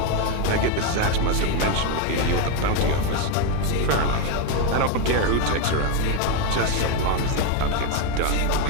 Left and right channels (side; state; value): both; different; correlation 0.02